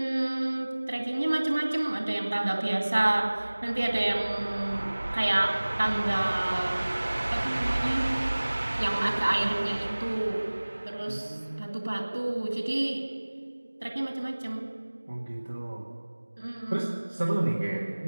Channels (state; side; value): inverted; both; correlation -1.00